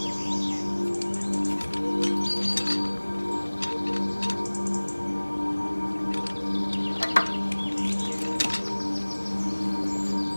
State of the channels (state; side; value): inverted; both; correlation -1.00